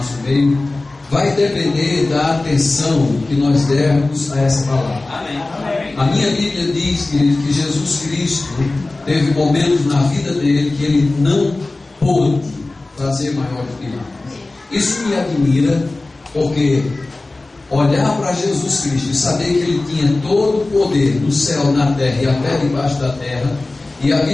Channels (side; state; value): right; quieter; 3.1 dB